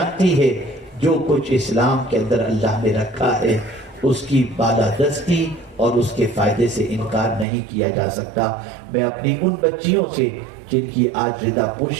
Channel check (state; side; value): drops out; left; at 7.5 s